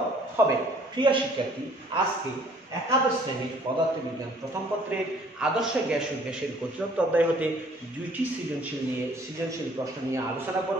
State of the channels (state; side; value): normal; both; correlation 0.57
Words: হবে। প্রিয় শিক্ষার্থী, আজকে একাদশ শ্রেণীর পদার্থবিজ্ঞান প্রথম পত্রের আদর্শ গ্যাস ও গ্যাসের গতিতত্ত্ব অধ্যায় হতে দুইটি সৃজনশীল প্রশ্ন নিয়ে আলোচনা